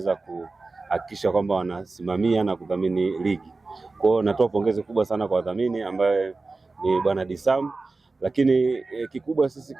kuhakikisha kwamba wanasimamia na kudhamini ligi. Kwa hiyo natoa pongezi kubwa sana kwa wadhamini ambaye ni Bwana Disam. Lakini kikubwa sisi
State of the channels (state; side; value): quieter; left; 3.7 dB